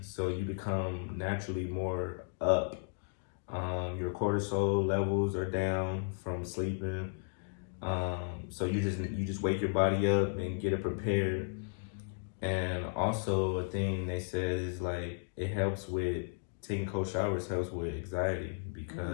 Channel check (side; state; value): right; silent; digital silence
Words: so you become naturally more up. Your cortisol levels are down from sleeping, so you just wake your body up and get it prepared. And also a thing they said is like it helps with taking cold showers helps with anxiety,